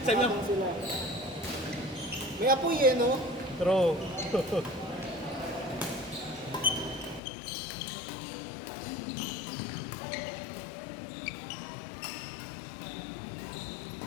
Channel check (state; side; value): drops out; right; at 7.2 s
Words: ko, Sila. May apoy eh, no? True.